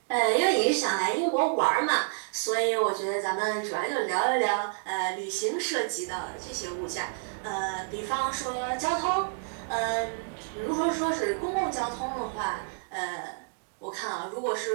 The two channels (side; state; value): left; silent; digital silence